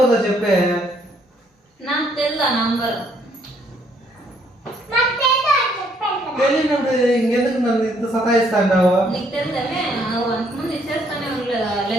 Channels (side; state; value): both; normal; correlation 0.68